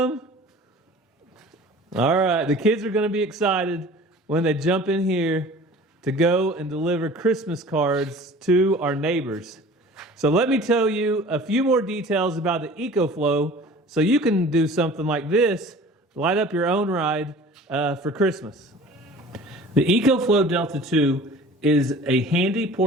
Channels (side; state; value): both; normal; correlation 0.44